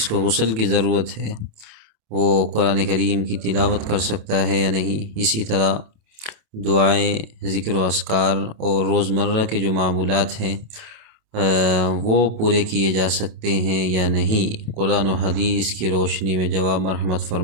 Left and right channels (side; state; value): left; late; 27 ms